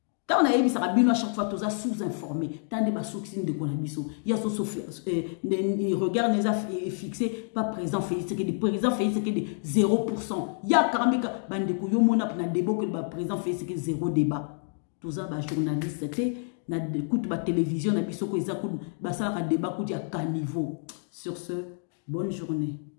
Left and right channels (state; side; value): silent; right; 59 dB below the other